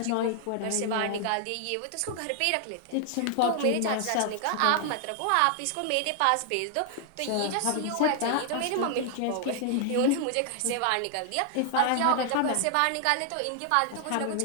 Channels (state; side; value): different; both; correlation 0.00